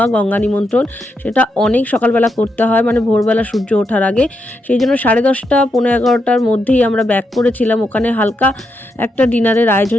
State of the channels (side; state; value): both; normal; correlation 0.82